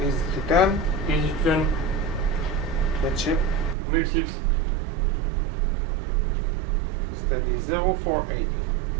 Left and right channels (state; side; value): drops out; left; at 3.8 s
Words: Easy to 10. Easy to 10. Midship. Midships. Steady 048.